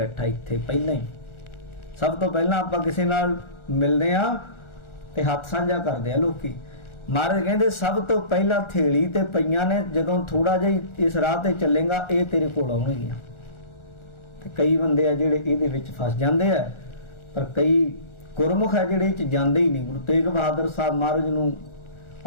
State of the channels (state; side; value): late; right; 1.4 ms